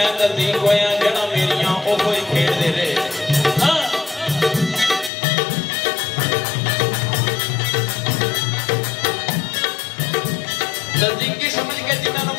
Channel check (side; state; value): right; drops out; at 5.1 s